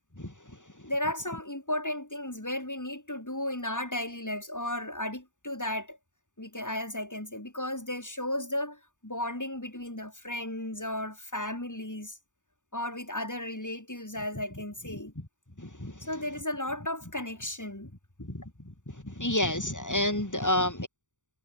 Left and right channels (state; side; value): late; right; 0.86 ms